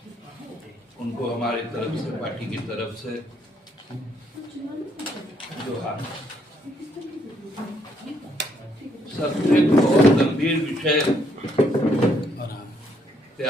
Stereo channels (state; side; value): normal; both; correlation 0.71